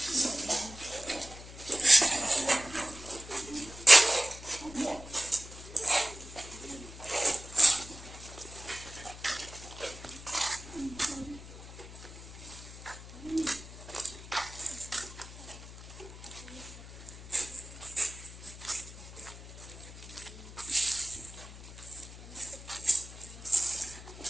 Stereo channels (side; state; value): left; noise; hum, 15 dB below the sound